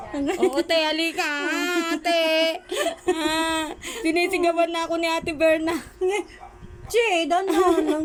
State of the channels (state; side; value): identical; both; correlation 1.00